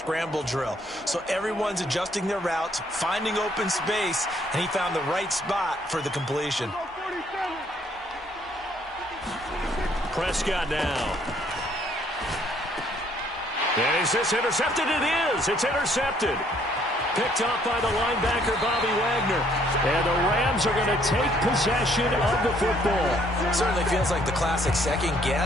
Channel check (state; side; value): normal; both; correlation 0.65